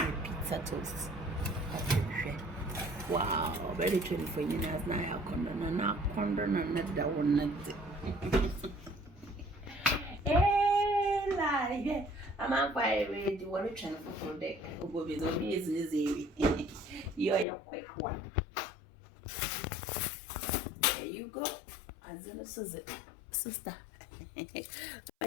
pizza toast. Wow, very true for you as na ya kondo na kondo na da one. Eh, lie. I'm on fire with the water channel for deck. Go with the business. You're a quick one. There you go. As in a sister.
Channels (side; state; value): right; drops out; at 17.4 s